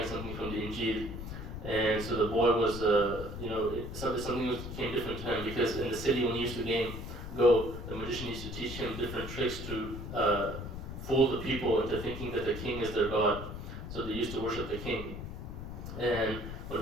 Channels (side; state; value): left; noise; rumble, 8 dB below the sound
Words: something from the Injil. And so the boy was, something became different to him, because in the city when he used to go, the magician used to teach him different tricks to fool the people into thinking that the king is their god. So they used to worship the king. And when